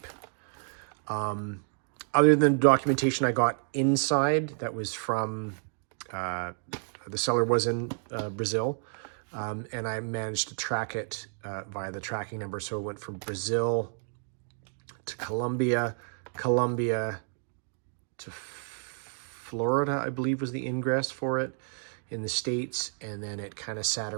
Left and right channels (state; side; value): silent; left; 58 dB below the other